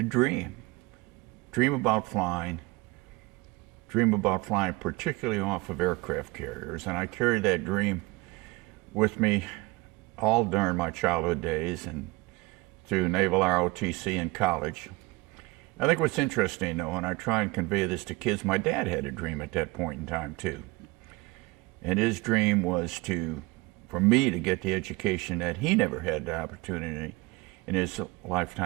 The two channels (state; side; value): quieter; left; 22.9 dB